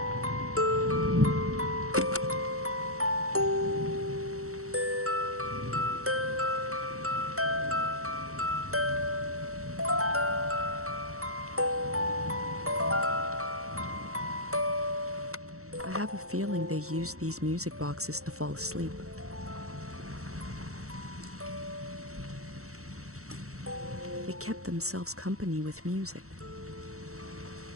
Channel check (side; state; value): left; late; 0.64 ms